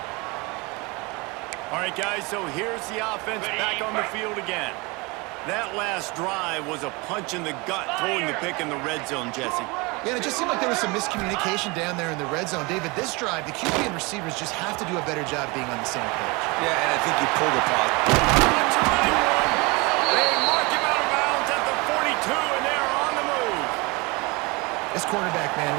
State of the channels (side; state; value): left; quieter; 26.6 dB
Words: All right, guys, so here's the offense back on the field again. That last drive was a punch in the gut, throwing the pick in the red zone, Jesse. Yeah, it just seemed like there was some miscommunication down there in the red zone. David, this drive, the QB and receivers just have to do a better job being on the same page. Yeah, and I think you pulled the pause. They mark him out of bounds at the 42, and they're on the move. This quarterback, man,